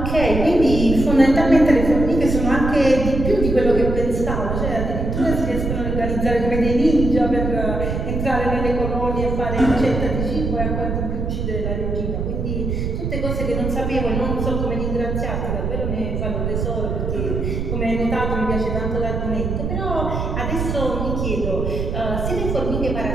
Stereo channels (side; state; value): right; noise; rumble, 2 dB below the sound